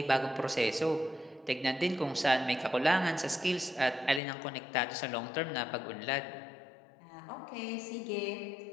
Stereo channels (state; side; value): drops out; right; at 4.2 s